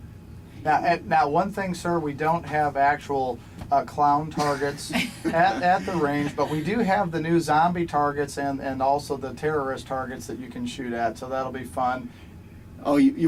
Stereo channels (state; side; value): identical; both; correlation 1.00